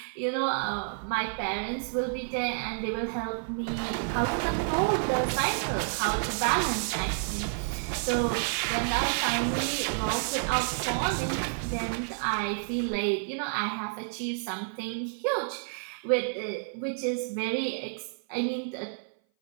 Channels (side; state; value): left; silent; 57 dB below the other